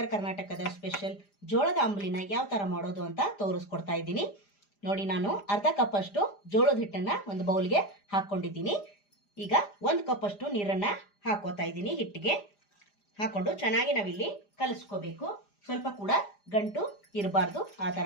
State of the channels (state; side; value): late; right; 5.0 ms